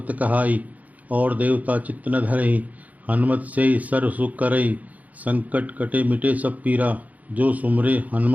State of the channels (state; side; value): late; left; 0.076 ms